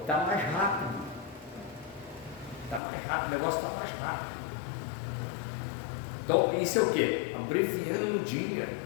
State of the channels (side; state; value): right; drops out; at 2.8 s